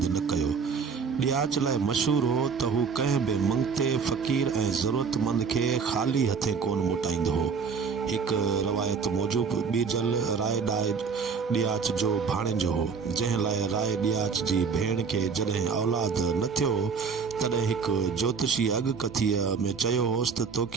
न कयो। ॾियाच लाइ मशहूर हो त हू कंहिं बि मंगते फ़क़ीर ऐं ज़रूरतमंद खे ख़ाली हथे कोन मोटाईंदो हो। हिकु रवायत मूजिबि ॿीजल राय ॾियाच जो भाणेजो हो, जंहिं लाइ राय ॾियाच जी भेण खे जॾहिं औलाद न थियो तॾहिं हिकु ज्योतिषी अॻकथीअ में चयो होसि त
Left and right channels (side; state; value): left; quieter; 5.7 dB